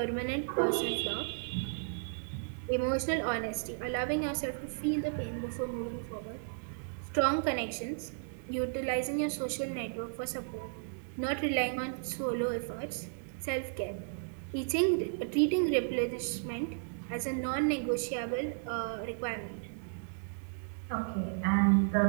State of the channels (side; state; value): left; silent; digital silence